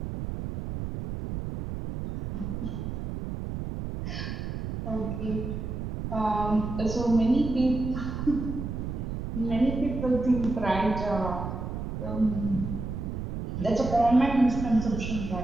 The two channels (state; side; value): noise; right; rumble, 5 dB below the sound